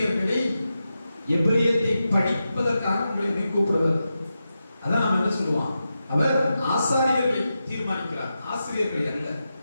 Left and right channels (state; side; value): inverted; both; correlation -0.90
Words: எபிரியத்தை படிப்பதற்காக உங்களை கூப்பிடுவார். அதான் நம்ம என்ன சொல்லுவான்? அவர் ஆசாரியர்களை தீர்மானிக்கிறார், ஆசிரியர்கள் அல்ல.